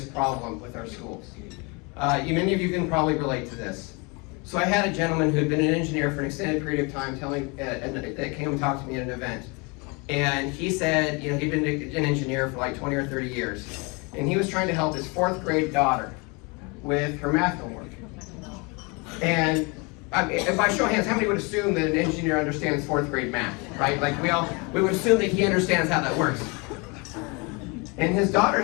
problem with our schools. Many of you can probably relate to this. So I had a gentleman who had been an engineer for an extended period of time that came and talked to me at an event. And he said, he'd been an engineer for like 20 or 30 years. And he was trying to help his 4th grade daughter with her math homework. And if I show hands, how many would assume that an engineer understands 4th grade math, right? Like we would assume that he understands how that works. And his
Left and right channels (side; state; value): right; quieter; 29.5 dB